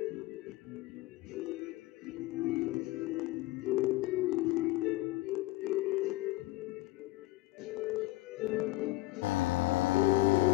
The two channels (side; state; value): right; quieter; 19.1 dB